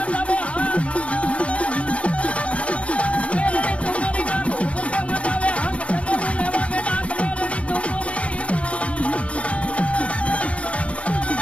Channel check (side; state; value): right; late; 0.062 ms